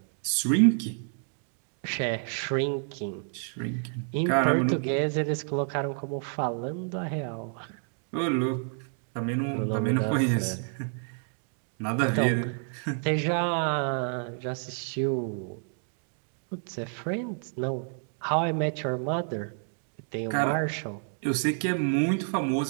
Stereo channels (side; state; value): left; silent; 58 dB below the other